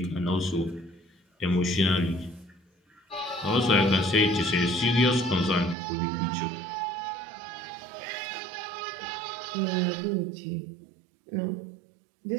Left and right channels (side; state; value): left; drops out; at 5.8 s